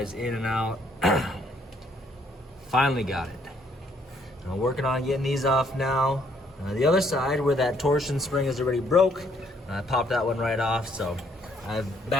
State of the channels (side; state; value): both; normal; correlation 0.67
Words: in and out. Finally got it. I'm working on getting these off now. The other side, where that torsion spring is already broke, I popped that one right off, so I've